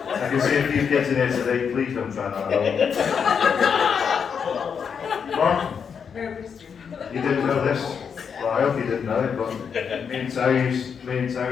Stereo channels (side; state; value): right; quieter; 6.7 dB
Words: I can see a few kids in here today, please don't try that at home. What? You didn't know this? Well, I hope you didn't know it, but me and Terry used